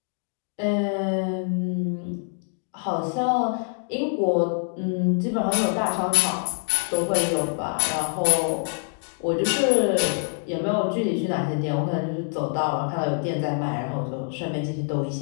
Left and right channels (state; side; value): silent; right; 62 dB below the other